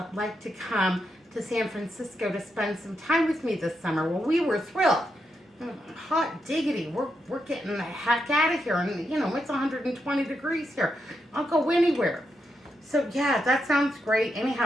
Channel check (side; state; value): both; normal; correlation 0.83